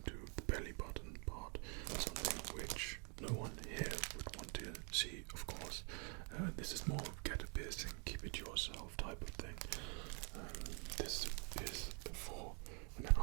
to the belly button part, something which no one here would want to see, of course. This is more get a piercing, keep it to yourself type of thing. This is for an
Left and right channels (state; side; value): quieter; left; 36.5 dB